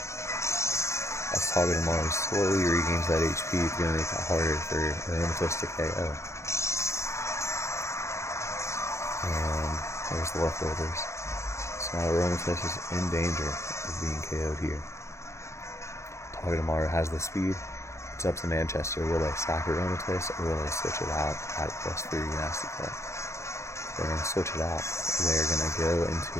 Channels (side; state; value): right; late; 0.14 ms